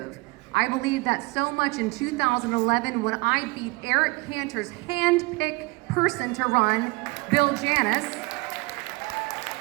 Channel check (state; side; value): quieter; left; 24.5 dB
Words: I believe that so much in 2011 when I beat Eric Cantor's hand-picked person to run, Bill Janus,